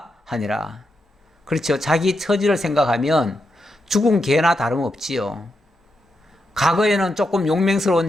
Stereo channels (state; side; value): normal; both; correlation 0.84